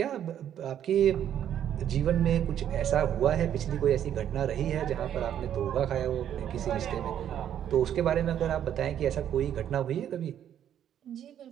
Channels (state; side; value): quieter; left; 10.1 dB